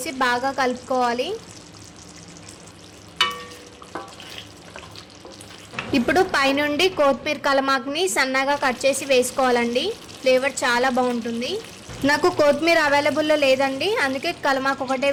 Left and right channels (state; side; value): identical; both; correlation 1.00